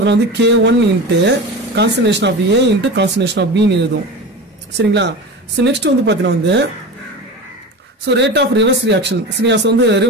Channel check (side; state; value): both; normal; correlation 0.29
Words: வந்து K1 into concentration of A into concentration of பின்னு எழுதும் சரிங்களா ஸோ நெக்ஸ்ட் வந்து பார்த்தீங்கன்னா வந்து so rate of reverse reaction சரியா ஸோ வந்து